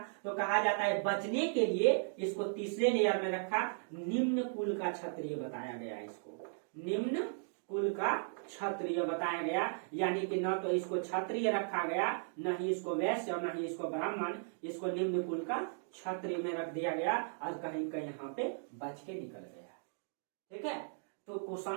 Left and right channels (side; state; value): left; silent; digital silence